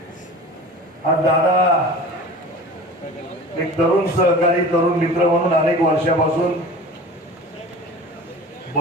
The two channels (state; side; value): normal; both; correlation 0.38